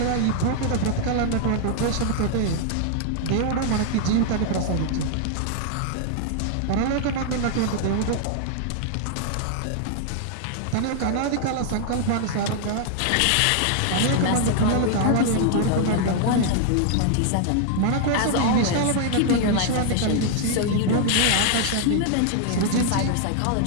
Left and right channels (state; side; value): different; both; correlation 0.00